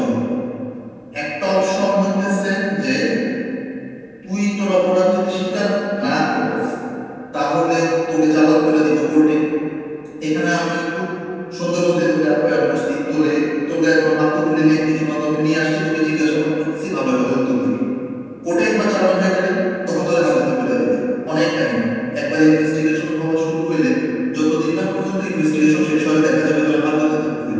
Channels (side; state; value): both; identical; correlation 1.00